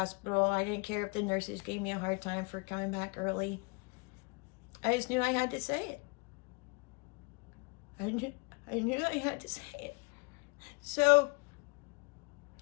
I didn't care if the nurses gave me a hard time for coming back early. I just knew I had to say it. I knew I had to say it. So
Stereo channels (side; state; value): right; quieter; 30.6 dB